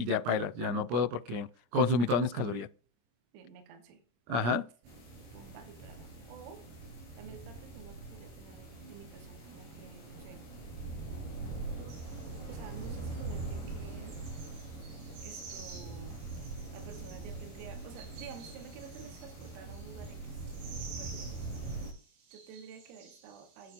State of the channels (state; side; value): late; left; 25 ms